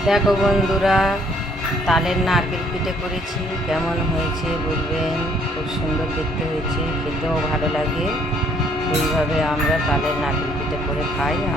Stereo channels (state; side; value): normal; both; correlation 0.64